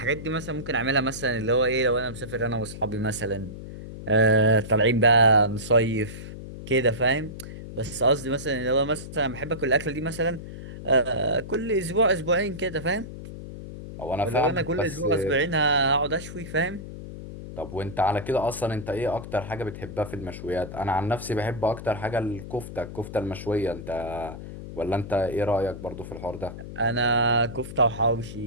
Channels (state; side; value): noise; left; hum, 11 dB below the sound